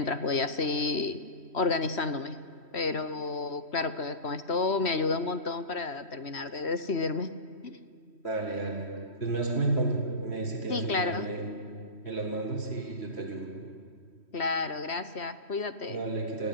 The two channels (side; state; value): right; late; 3.1 ms